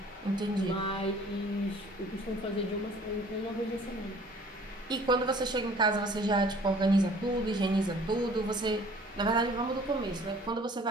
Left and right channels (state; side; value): normal; both; correlation 0.52